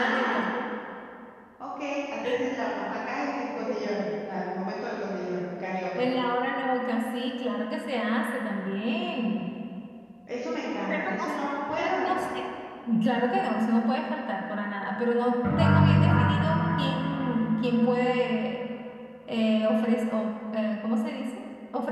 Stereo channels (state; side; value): identical; both; correlation 1.00